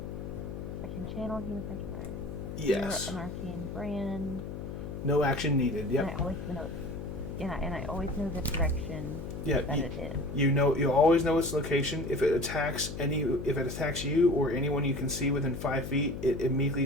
I can channel Human Yes. An arcane brand. No action needed. Yep. And I always know. And I always know the direction Yeah. that it is. You always know its location. If it attacks you or anyone you can see within 5 feet, it immediately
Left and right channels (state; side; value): noise; left; hum, 7 dB below the sound